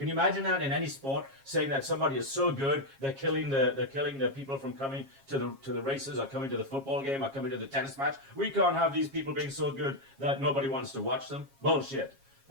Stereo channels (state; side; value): late; left; 7.3 ms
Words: you imagine that in any sport, saying that somebody is so good they're killing the people from coming to the races or coming to the football game or coming to the tennis match? We can't have these people being so good that nobody wants to watch them. Bullshit.